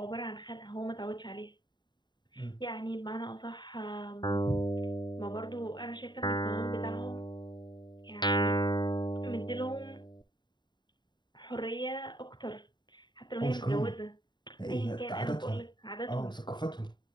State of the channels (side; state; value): right; late; 0.21 ms